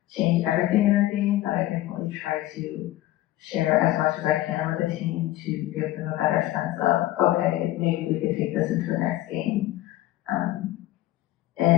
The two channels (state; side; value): quieter; right; 15.5 dB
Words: change everything in our game, but I definitely try to share as much as I can with the team to give them a better sense of, okay, maybe we could take this into the next game.